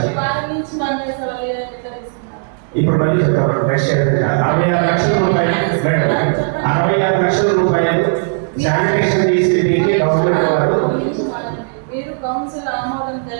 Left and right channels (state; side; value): silent; left; digital silence